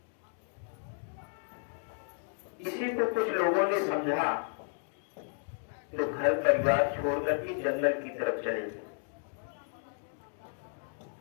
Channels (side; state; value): right; silent; 56 dB below the other